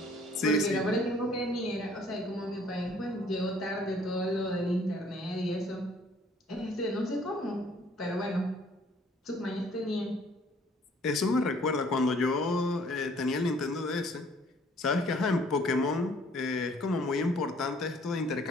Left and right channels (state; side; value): normal; both; correlation 0.58